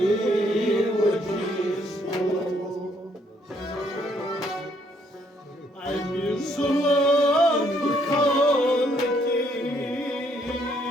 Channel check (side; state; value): both; normal; correlation 0.69